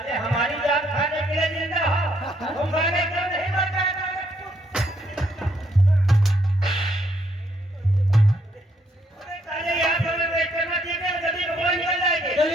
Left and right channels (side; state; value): both; normal; correlation 0.71